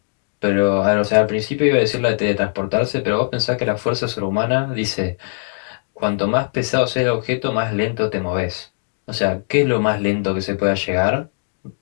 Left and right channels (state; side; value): silent; right; 65 dB below the other